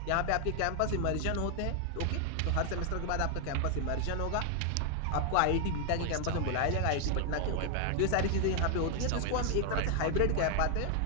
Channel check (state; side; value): different; both; correlation 0.00